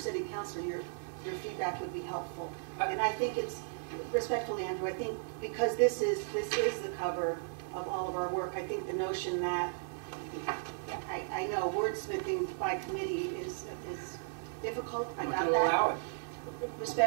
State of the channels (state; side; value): silent; left; digital silence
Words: councilor, your feedback would be helpful. And I think it's, respectfully, Andrew, I think because this is the cover of all of our work, I think the notion that, I know wordsmithing by committee is difficult, I got that. Allow it.